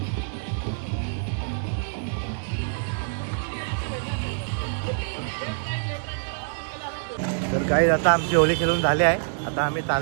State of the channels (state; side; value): silent; left; digital silence